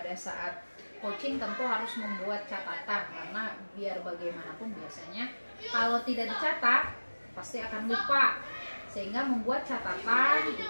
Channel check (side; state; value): both; inverted; correlation -1.00